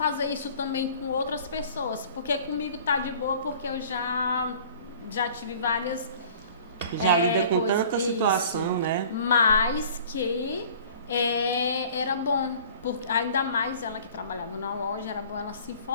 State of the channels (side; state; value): both; inverted; correlation -0.48